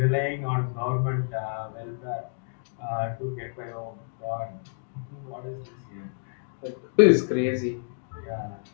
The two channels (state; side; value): silent; right; digital silence